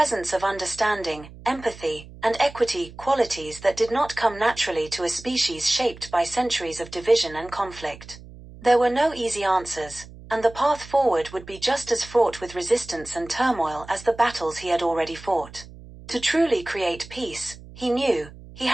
of understanding, empathy, and equity, qualities that did not come naturally to a species shaped by centuries of division and conflict. There were no easy answers, and the path forward would be just as fraught with resistance and turmoil as the battles he had already fought. To truly create peace, he knew, he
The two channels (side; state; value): right; noise; hum, 18 dB below the sound